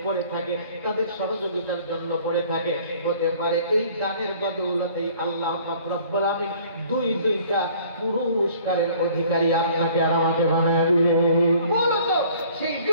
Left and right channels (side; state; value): both; inverted; correlation -0.54